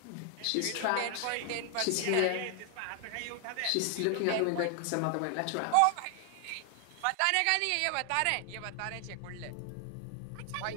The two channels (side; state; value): both; different; correlation 0.00